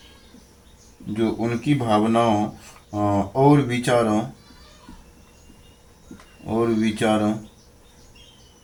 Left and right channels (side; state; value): both; identical; correlation 1.00